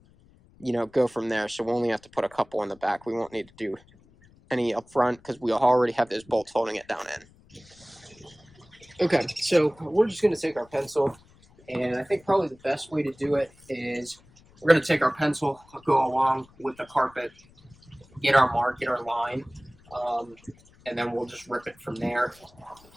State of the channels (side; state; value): left; noise; rumble, 27 dB below the sound